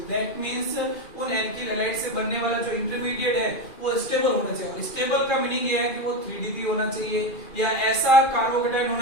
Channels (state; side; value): late; right; 2.4 ms